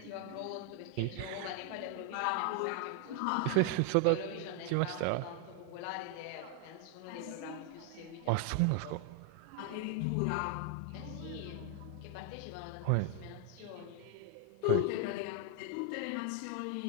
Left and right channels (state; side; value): different; both; correlation 0.00